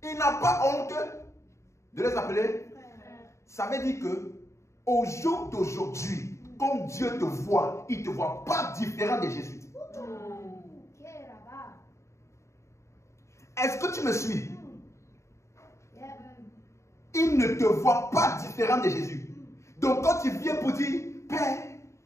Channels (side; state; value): right; late; 0.14 ms